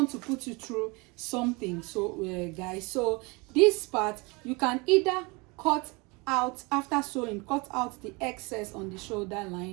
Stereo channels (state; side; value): quieter; left; 27.3 dB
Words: to put you through something. So guys, so this part you can either cut out after sewing, cut out the excess on the shoulder